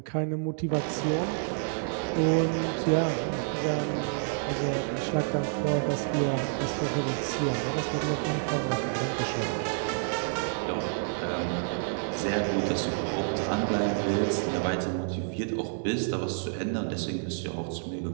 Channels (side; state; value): left; silent; digital silence